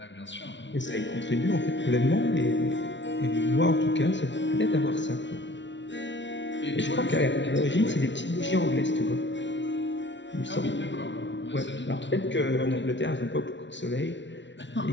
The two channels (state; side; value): late; right; 0.53 ms